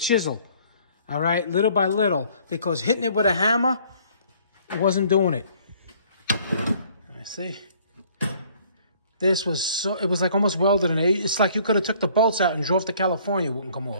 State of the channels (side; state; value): both; inverted; correlation -0.59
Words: All right, little by little. Because hitting it with a hammer, it wasn't doing it. Let me see. This was so, it was like almost welded in it. It's like you could have took the bolts out and drove to California, it wouldn't come